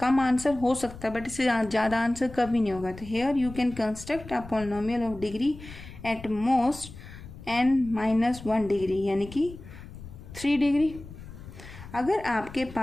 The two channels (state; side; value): noise; left; rumble, 15 dB below the sound